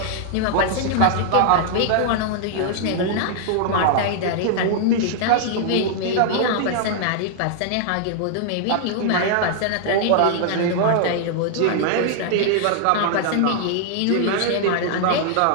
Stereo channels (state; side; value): different; both; correlation -0.01